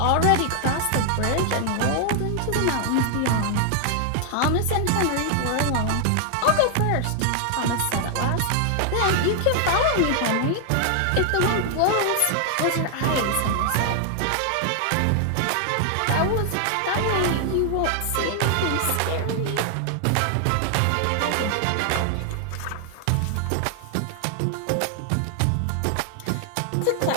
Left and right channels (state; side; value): different; both; correlation 0.00